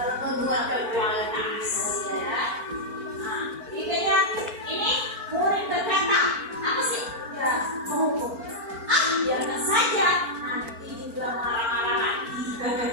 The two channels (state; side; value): late; left; 4.4 ms